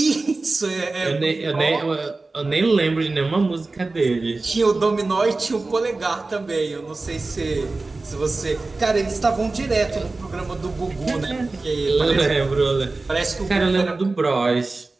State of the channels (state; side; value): quieter; left; 3.5 dB